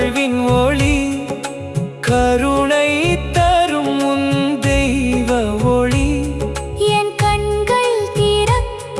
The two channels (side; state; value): both; identical; correlation 1.00